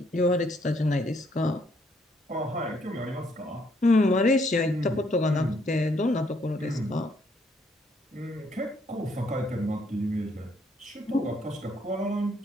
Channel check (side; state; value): both; normal; correlation 0.69